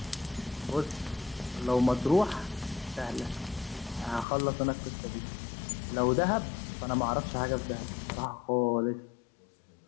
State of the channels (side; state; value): right; drops out; at 4.2 s